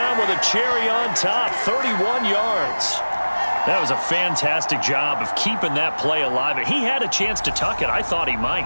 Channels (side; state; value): both; inverted; correlation -1.00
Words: with a cherry on top, 31 yards. That was a fantastic job of keeping that play alive. He had a chance to tuck it. I thought he might.